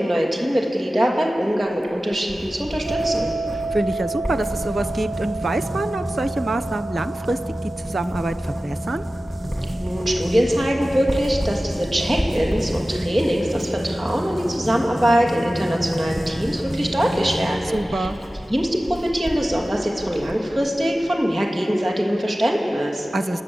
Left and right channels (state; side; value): normal; both; correlation 0.95